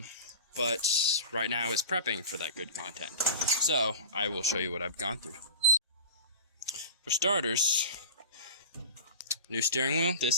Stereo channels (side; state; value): both; inverted; correlation -0.33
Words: right now is prepping for that good content. So, I will show you what I've gone through. For starters, new steering wheel.